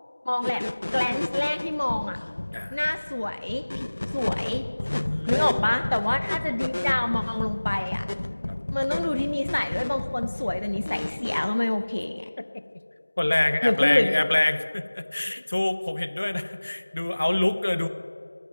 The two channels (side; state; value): both; inverted; correlation -1.00